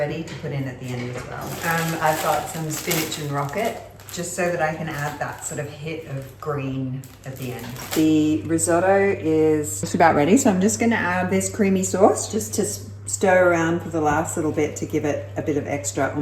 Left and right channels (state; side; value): identical; both; correlation 1.00